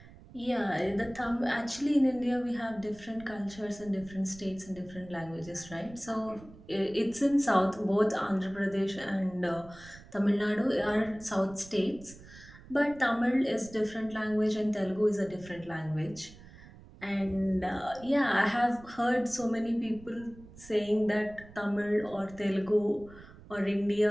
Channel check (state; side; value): noise; right; rumble, 20 dB below the sound